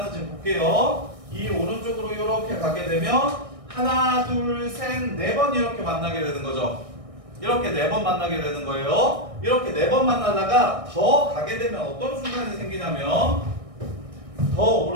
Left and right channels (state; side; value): late; left; 1.6 ms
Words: 볼게요. 이 오른쪽으로 이렇게 가게 되면 하나, 둘, 셋, 4번 이렇게 만나게 되는 거죠. 이렇게 4번 만나게 되는 거예요. 이렇게 4번 만나다가 더 가게 되면 어떤 순간이 생기냐면, 더